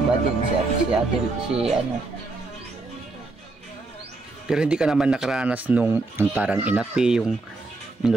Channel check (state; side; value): quieter; left; 3.3 dB